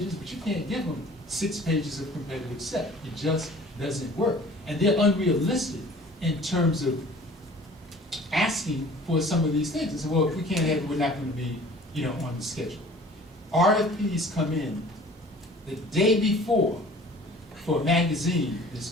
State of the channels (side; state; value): both; normal; correlation 0.48